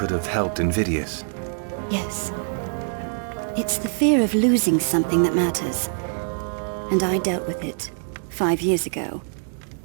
have helped Invidious. Yes. It's the fear of losing something that matters. And I dealt with it 5 years ago,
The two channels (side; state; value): left; silent; digital silence